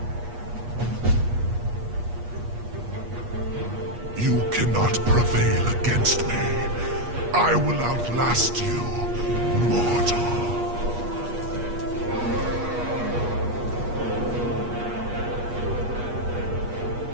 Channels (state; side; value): late; left; 8.4 ms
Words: You cannot prevail against me. I will outlast you, mortal.